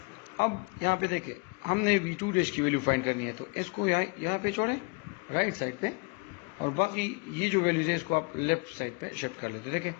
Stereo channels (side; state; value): right; quieter; 29.8 dB